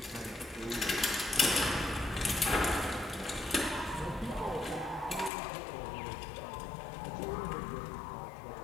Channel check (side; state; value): right; drops out; at 5.3 s